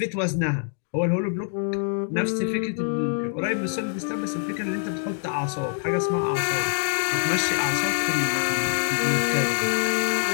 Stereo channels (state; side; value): silent; right; 61 dB below the other